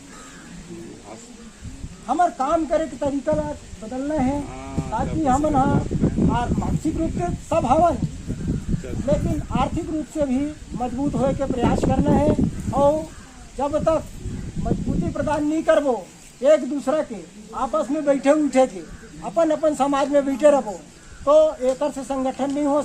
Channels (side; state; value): both; identical; correlation 1.00